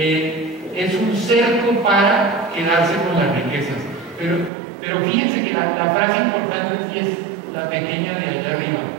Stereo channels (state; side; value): drops out; left; at 4.5 s